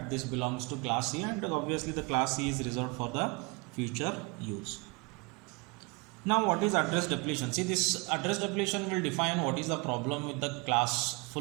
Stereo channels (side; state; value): left; quieter; 28.9 dB